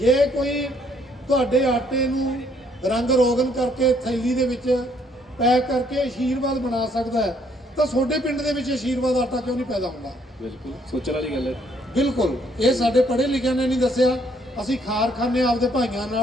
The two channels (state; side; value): normal; both; correlation 0.67